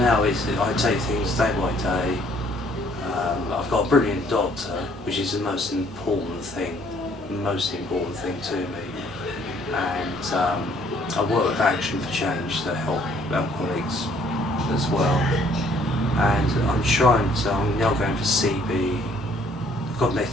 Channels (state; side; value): normal; both; correlation 0.62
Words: I take things day by day. I've got a brilliant doctor, which is the most important thing to me. And I work with Action for Change to help alcoholics as well. And I'm now going for CB,